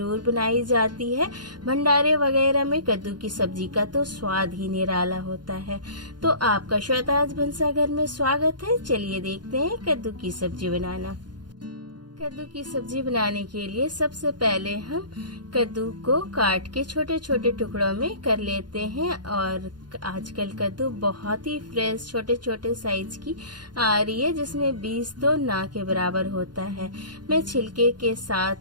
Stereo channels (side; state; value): left; late; 0.71 ms